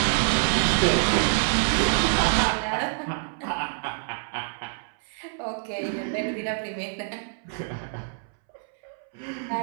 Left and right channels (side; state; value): left; silent; 61 dB below the other